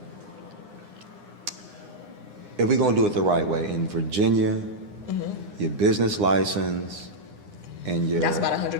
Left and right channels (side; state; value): left; late; 9.8 ms